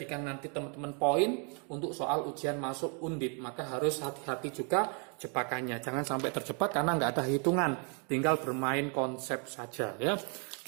nanti teman-teman poin untuk soal ujian masuk Undip. Maka harus hati-hati juga jebakannya. Jangan sampai terjebak karena nggak ada hitungan. Tinggal bermain konsep saja ya.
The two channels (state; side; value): quieter; left; 38.0 dB